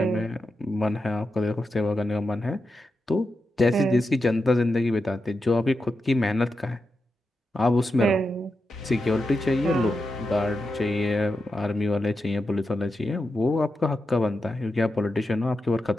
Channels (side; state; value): both; normal; correlation 0.88